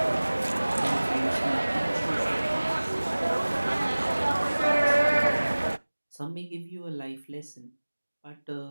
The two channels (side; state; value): both; inverted; correlation -1.00